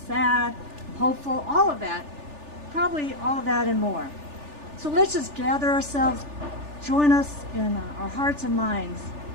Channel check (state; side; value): late; left; 3.4 ms